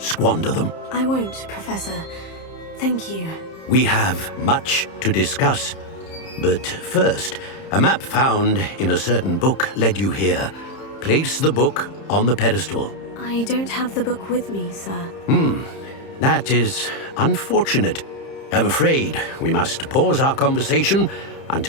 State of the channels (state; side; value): late; right; 30 ms